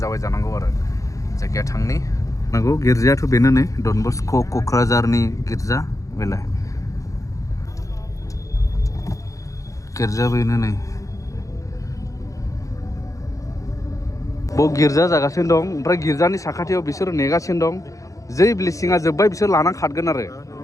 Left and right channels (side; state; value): right; late; 0.16 ms